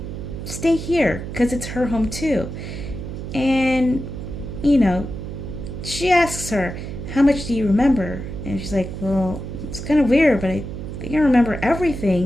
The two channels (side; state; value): right; noise; hum, 8 dB below the sound